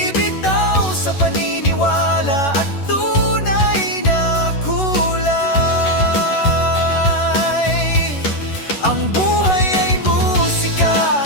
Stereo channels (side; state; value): right; late; 11 ms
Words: paniniwala at tunay na kulay. Ang buhay ay musika,